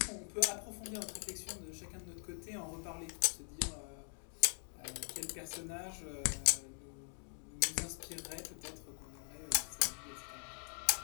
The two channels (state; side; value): silent; right; 50 dB below the other